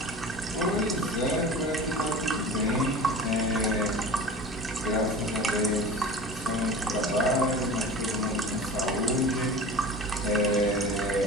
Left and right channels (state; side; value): normal; both; correlation 0.36